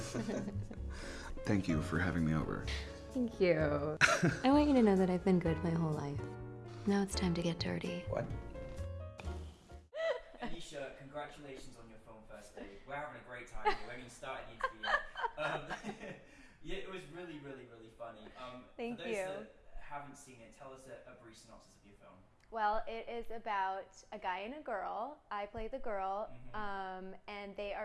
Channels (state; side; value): identical; both; correlation 1.00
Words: clip. Thank you for having me over. Thank you. I want you to know that I've been good my whole life. Now it's time to get dirty. What? Anisha, congratulations on your film First Date. We're having a great time here. We haven't even started the interview yet. Yeah, it was really, really, really funny. Thank for those you. that haven't seen it, tell us a brief synopsis of your film. Well, it is about a guy and a girl. I play the girl, and they